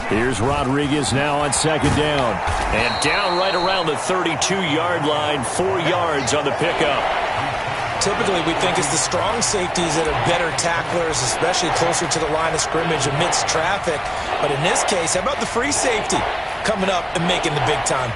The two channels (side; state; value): both; identical; correlation 1.00